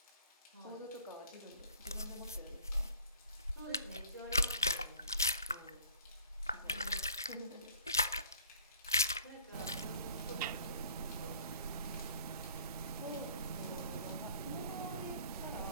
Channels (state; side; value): inverted; both; correlation -0.51